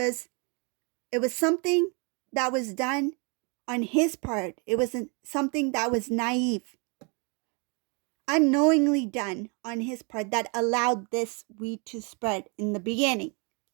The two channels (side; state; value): left; quieter; 33.8 dB